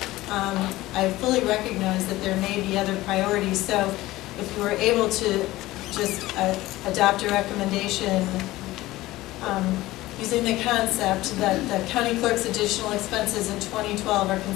I fully recognize that there may be other priorities. So if you were able to just adopt a recommendation using the concept that the county clerk's additional expenses in 2012 are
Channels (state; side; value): quieter; right; 17.6 dB